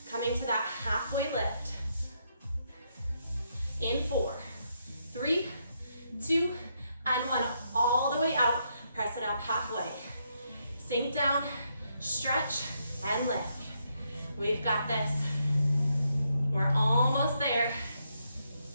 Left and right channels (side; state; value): both; inverted; correlation -0.78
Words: coming to that halfway lift. In 4, 3, 2, and 1. All the way out, press it up halfway. Sink down, stretch, and lift. We've got this. We're almost there.